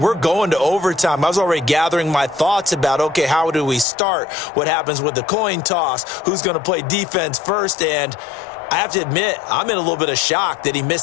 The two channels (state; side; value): drops out; right; at 3.9 s